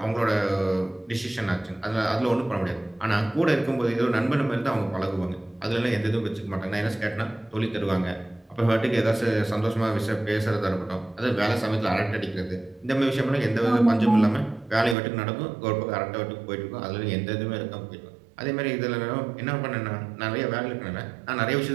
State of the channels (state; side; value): drops out; left; at 15.0 s